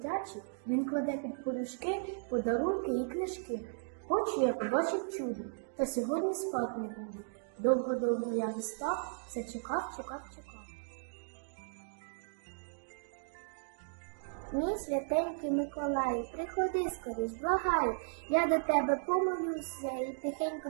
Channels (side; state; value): left; silent; digital silence